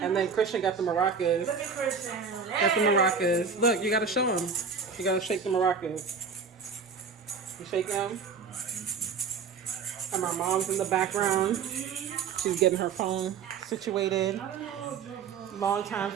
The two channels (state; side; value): quieter; left; 5.7 dB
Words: and then Christian got the maracas. Look at Christian. Got the maracas. Look, you gotta show them. You gotta shake the maracas. You shake them. And my mom's in the background. She's getting her phone situated. Longtime